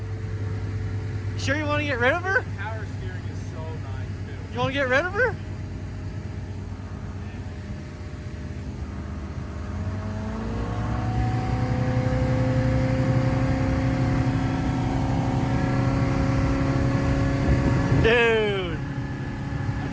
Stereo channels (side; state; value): both; identical; correlation 1.00